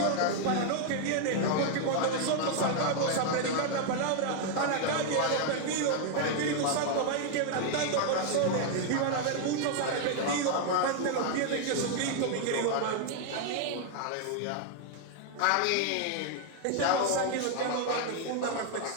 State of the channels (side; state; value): both; different; correlation 0.00